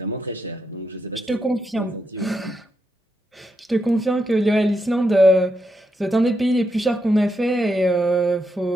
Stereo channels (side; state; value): both; normal; correlation 0.82